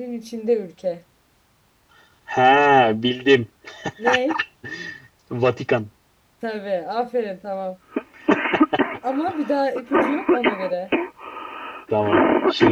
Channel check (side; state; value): both; identical; correlation 1.00